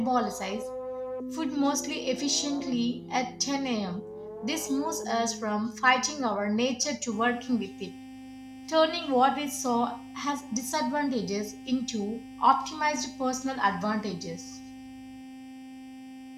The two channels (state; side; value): identical; both; correlation 1.00